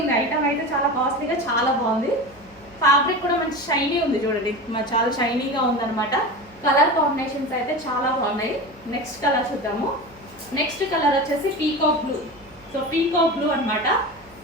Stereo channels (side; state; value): both; normal; correlation 0.28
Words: ఉంది ఐటమ్ అయితే, చాలా కాస్ట్లీగా చాలా బాగుంది. ఫ్యాబ్రిక్ కూడా మంచి షైనీ ఉంది చూడండి, చాలా షైనీగా ఉందన్నమాట. కలర్ కాంబినేషన్స్ అయితే చాలా బాగున్నాయి. నెక్స్ట్ కలర్ చూద్దాము. నెక్స్ట్ కలర్ వచ్చేసి peacock blue. So peacock blue అనమాట.